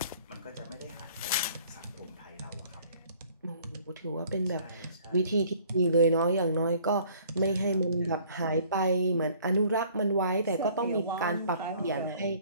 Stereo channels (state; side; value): inverted; both; correlation -0.56